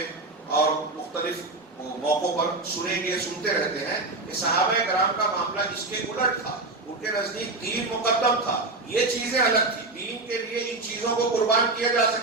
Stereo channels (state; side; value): quieter; left; 3.1 dB